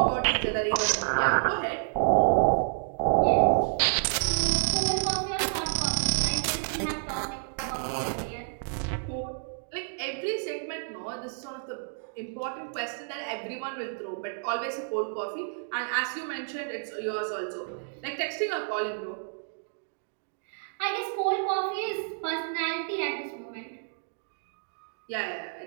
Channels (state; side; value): silent; left; digital silence